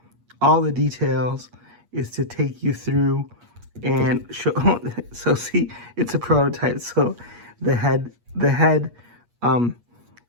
all the details is to take you through and show. So see, it's a prototype. So the head,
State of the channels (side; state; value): left; late; 8.4 ms